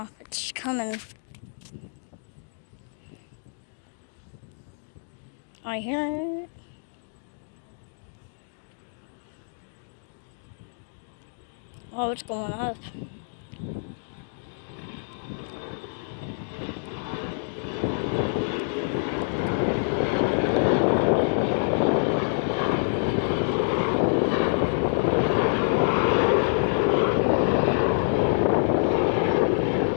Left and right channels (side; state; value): right; silent; digital silence